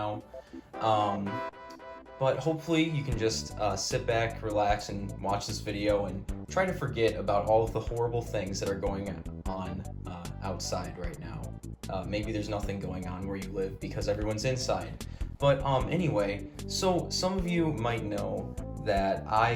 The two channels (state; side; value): identical; both; correlation 1.00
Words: Um, but hopefully you can just sit back, relax, and watch this video and try to forget about all of the horrible things that are going on outside right now. Maybe there's nothing going on where you live because everyone's inside. But anyway, so some of you might know that